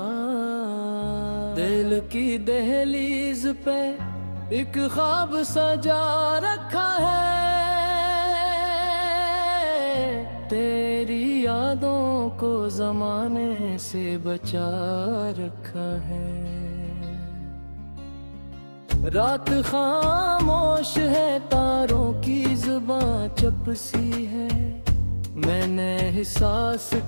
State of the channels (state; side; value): inverted; both; correlation -1.00